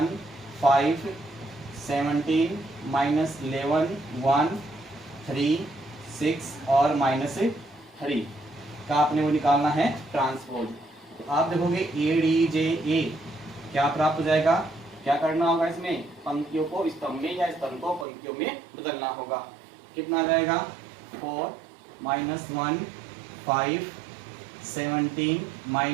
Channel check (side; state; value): left; drops out; at 18.1 s